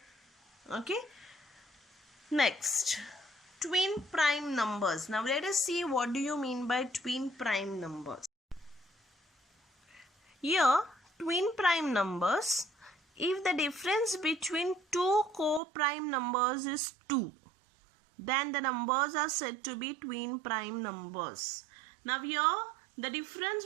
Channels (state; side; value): drops out; left; at 15.6 s